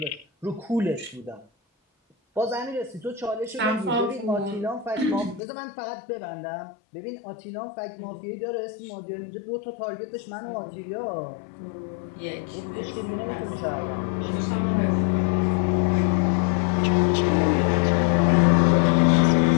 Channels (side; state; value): right; drops out; at 5.4 s